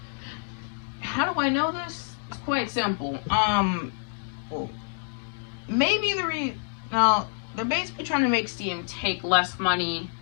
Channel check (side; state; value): right; silent; digital silence